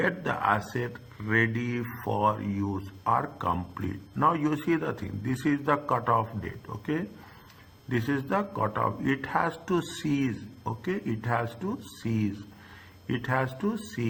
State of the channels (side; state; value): both; identical; correlation 1.00